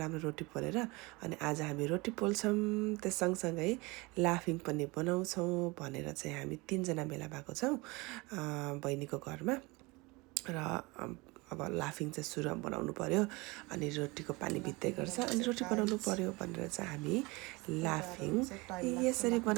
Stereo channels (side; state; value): left; quieter; 24.7 dB